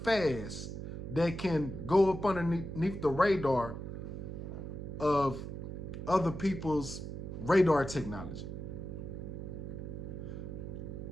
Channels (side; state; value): right; noise; hum, 7 dB below the sound